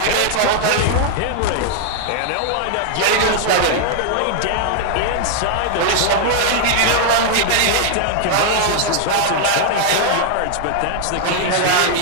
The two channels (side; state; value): both; different; correlation 0.00